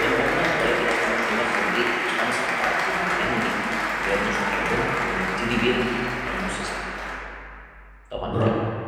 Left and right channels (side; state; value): both; identical; correlation 1.00